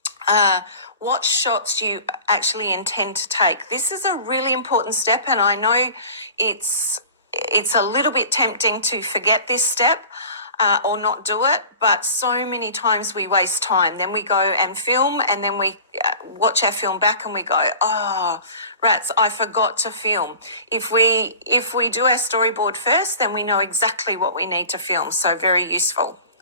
what shots you actually intend to take. This is a really important step, and I know it's a little bit tempting to forget this step or not do it, but so many times we waste time. Then we go and film, and then we watch our film back and we go, oh, rats, I forgot to film. If we do our storyboard first, then we know exactly what we need to film. So very useful.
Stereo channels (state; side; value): inverted; both; correlation -0.41